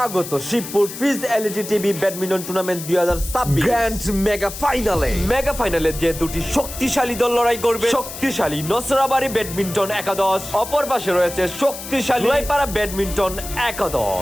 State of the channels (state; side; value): noise; left; hiss, 10 dB below the sound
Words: শিবপুর ফিজ LED TV badminton tournament 2026 grand mega ফাইনালে যে দুটি শক্তিশালী দল লড়াই করবে। শক্তিশালী নসরাবাড়ি ব্যাডমিন্টন একাদশ, অপর পাশে রয়েছে শক্তিশালী জয়পাড়া ব্যাডমিন্টন একাদশ।